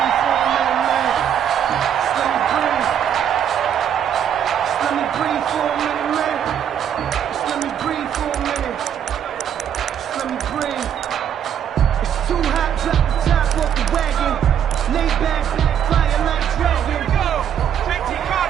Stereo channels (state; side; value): quieter; left; 9.1 dB